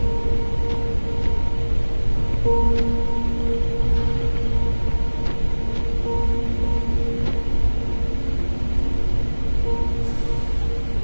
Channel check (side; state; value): both; inverted; correlation -1.00